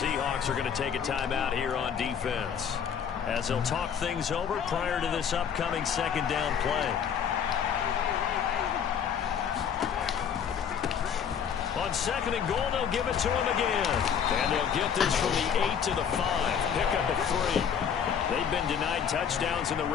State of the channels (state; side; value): quieter; right; 7.7 dB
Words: are going to take a timeout here on defense, as they'll talk things over prior to this upcoming second down play. On second and goal, they'll give it to him again. And they'll get this from the 8 to the 5. Pick up a 3. They've been denied touchdowns in the